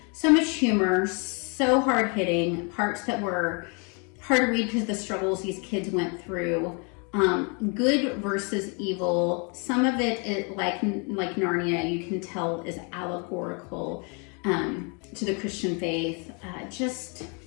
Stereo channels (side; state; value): right; quieter; 34.6 dB